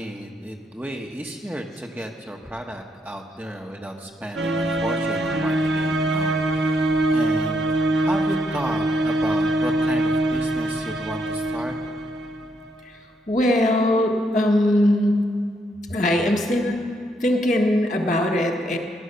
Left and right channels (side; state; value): both; normal; correlation 0.76